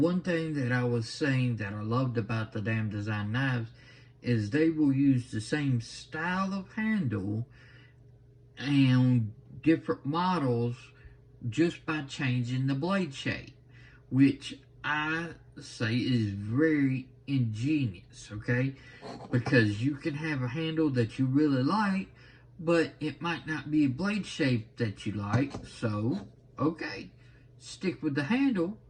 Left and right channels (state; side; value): identical; both; correlation 1.00